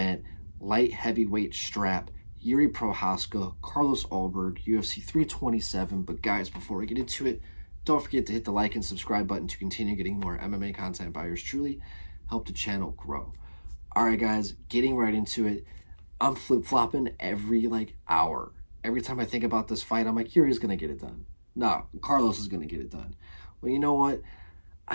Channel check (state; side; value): inverted; both; correlation -1.00